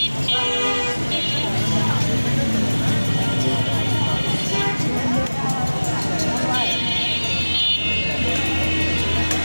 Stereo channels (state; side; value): inverted; both; correlation -1.00